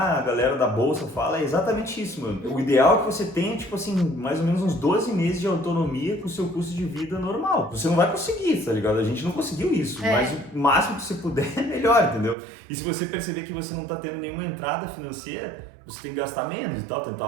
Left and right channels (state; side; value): drops out; left; at 12.4 s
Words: a galera da bolsa fala, é exatamente isso, mano. O ideal é que você tenha, tipo assim, mais ou menos uns 12 meses de autonomia pro seu custo de vida normal. Você não vai conseguir, tá ligado? A gente não conseguiu isso, mas o máximo que você puder é melhor, entendeu? E se você perceber que você não tá tendo nenhuma entrada financeira, você tem que gastar menos e tal, tentar